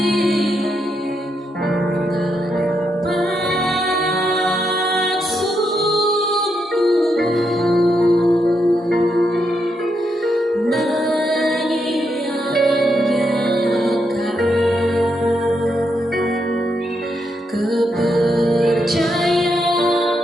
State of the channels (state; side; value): normal; both; correlation 0.81